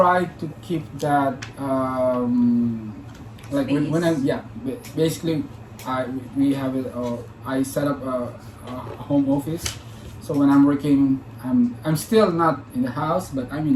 to keep that like when I basically we have it. I set up a home office. So when I'm working, I'm still not in the house, but I'm in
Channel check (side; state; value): both; identical; correlation 1.00